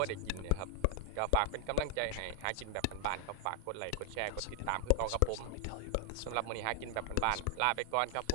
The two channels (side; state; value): both; different; correlation 0.00